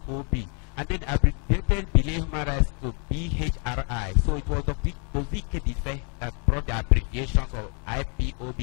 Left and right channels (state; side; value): quieter; right; 39.4 dB